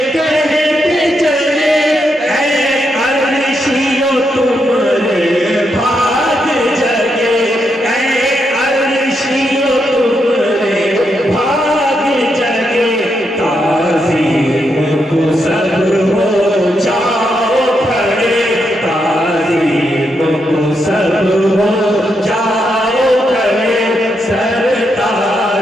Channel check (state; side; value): normal; both; correlation 0.81